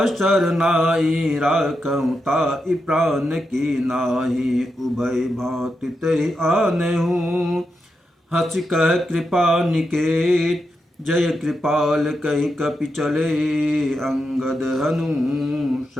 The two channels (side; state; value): both; normal; correlation 0.86